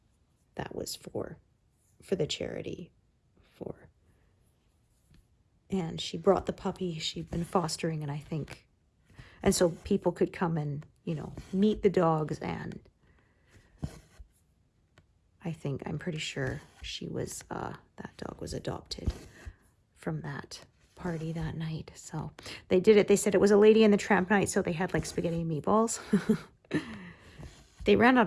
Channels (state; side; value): identical; both; correlation 1.00